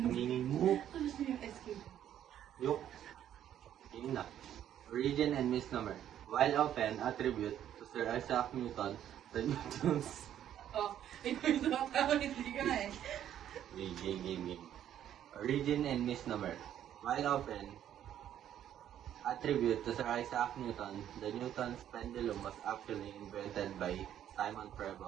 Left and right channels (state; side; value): quieter; left; 10.7 dB